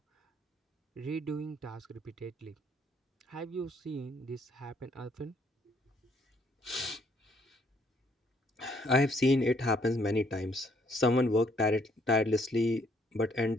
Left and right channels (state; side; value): normal; both; correlation 0.67